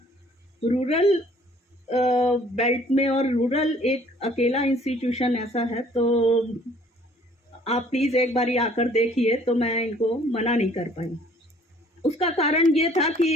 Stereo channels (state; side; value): normal; both; correlation 0.57